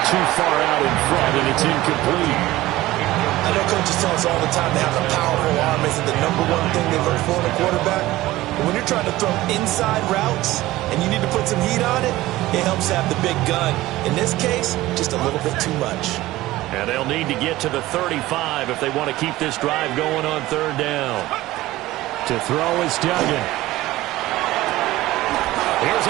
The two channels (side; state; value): left; quieter; 17.1 dB